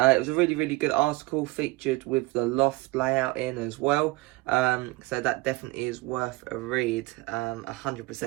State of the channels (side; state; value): left; quieter; 21.6 dB